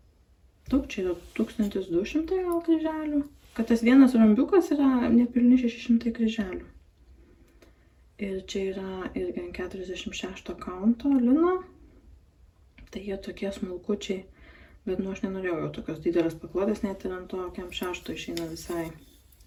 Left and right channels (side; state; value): both; identical; correlation 1.00